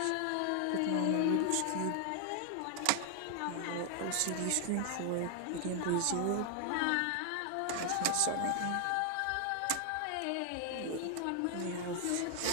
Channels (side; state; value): both; different; correlation 0.00